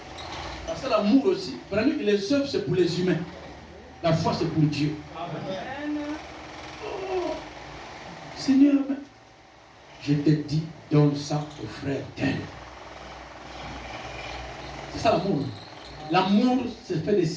Parce que l'amour aussi, vraiment, les œuvres c'est pour les humains. La foi c'est pour Dieu. Amen. Oh, Seigneur, je te dis, donne ça au frère tel. C'est ça l'amour. L'amour, c'est faire des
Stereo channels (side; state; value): both; identical; correlation 1.00